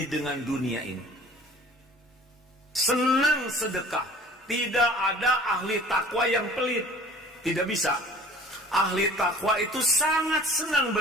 dengan dunia ini, senang sedekah. Tidak ada ahli takwa yang pelit, tidak bisa. Ahli takwa itu sangat senang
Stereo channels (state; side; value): normal; both; correlation 0.48